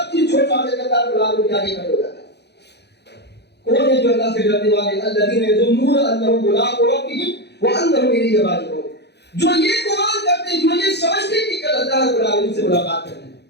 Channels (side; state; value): right; late; 0.49 ms